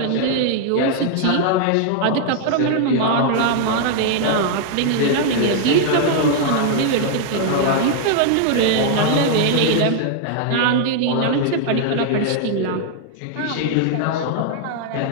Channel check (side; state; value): both; different; correlation -0.01